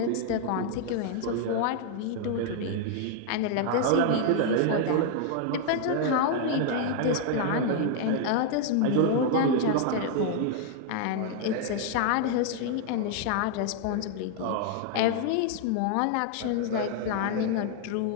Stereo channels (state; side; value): different; both; correlation 0.00